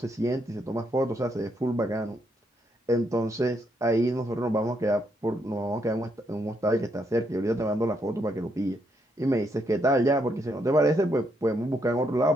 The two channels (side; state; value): both; normal; correlation 0.76